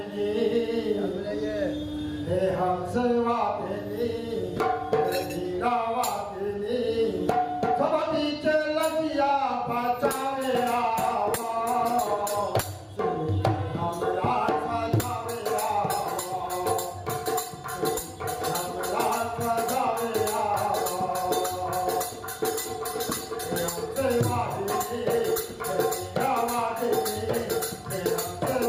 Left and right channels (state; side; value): identical; both; correlation 1.00